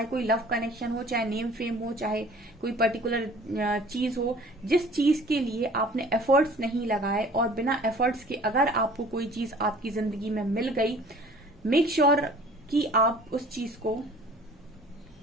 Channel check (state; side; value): normal; both; correlation 0.49